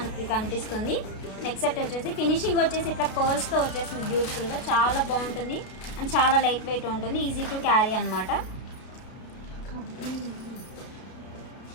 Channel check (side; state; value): right; late; 32 ms